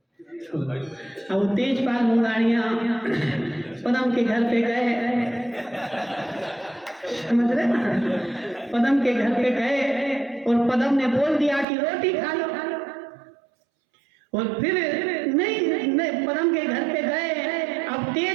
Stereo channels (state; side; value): drops out; left; at 11.7 s